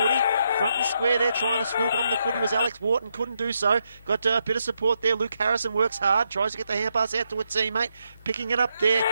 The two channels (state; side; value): inverted; both; correlation -0.80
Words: Front and square there, trying to swoop on the footy was Alex Wharton, couldn't do so. Got a bit of support there. Luke Harrison works hard, tries to get the hand pass out to a teammate. Picking it up there